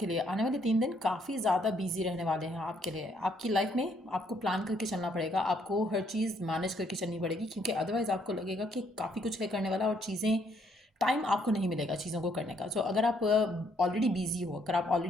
लिए आने वाले 3 दिन काफ़ी ज़्यादा बिजी रहने वाले हैं आपके लिए। आपकी लाइफ में आपको प्लान करके चलना पड़ेगा, आपको हर चीज़ मैनेज करके चलनी पड़ेगी, क्योंकि अदरवाइज़ आपको लगेगा कि काफ़ी कुछ है करने वाला और चीज़ें टाइम आपको नहीं मिलेगा चीज़ों को करने का। सो अगर आप ऑलरेडी बिजी हो, अगर आप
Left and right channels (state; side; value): normal; both; correlation 0.69